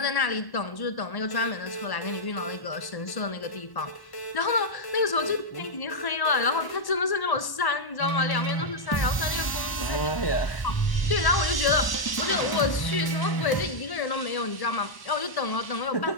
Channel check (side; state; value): right; late; 1.1 ms